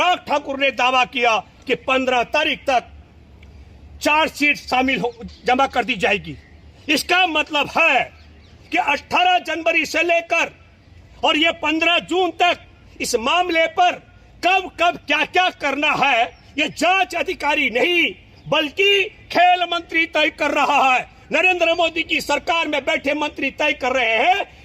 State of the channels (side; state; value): both; identical; correlation 1.00